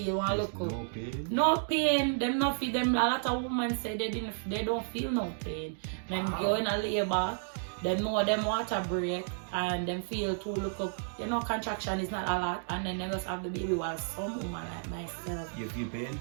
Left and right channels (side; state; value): left; silent; digital silence